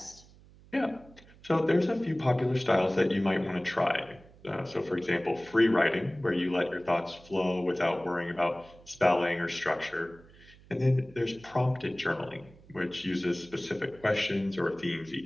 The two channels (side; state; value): right; noise; hum, 24 dB below the sound